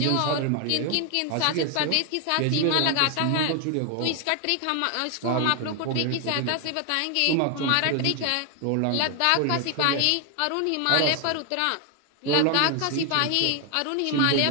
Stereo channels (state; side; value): different; both; correlation 0.00